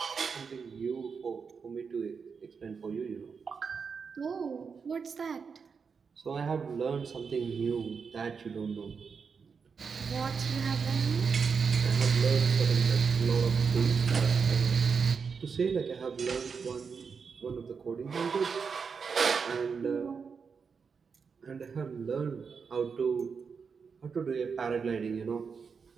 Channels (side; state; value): left; quieter; 5.7 dB